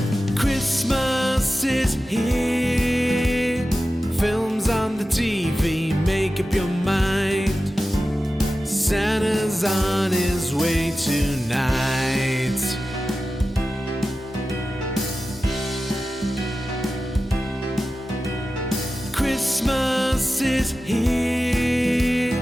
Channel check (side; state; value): both; normal; correlation 0.94